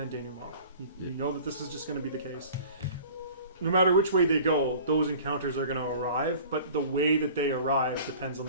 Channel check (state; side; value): inverted; both; correlation -0.45